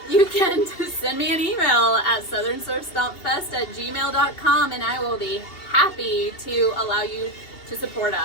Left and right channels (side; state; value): right; late; 2.7 ms